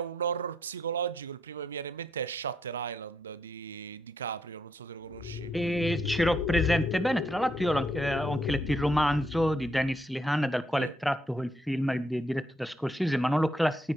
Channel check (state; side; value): normal; both; correlation 0.76